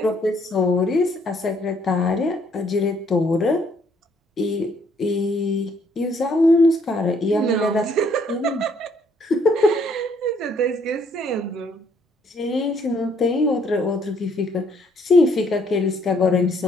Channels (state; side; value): normal; both; correlation 0.66